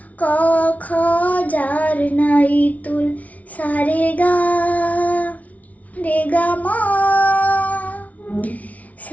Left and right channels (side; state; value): right; late; 0.070 ms